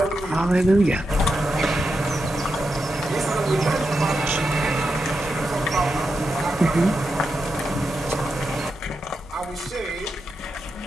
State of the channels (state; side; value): normal; both; correlation 0.87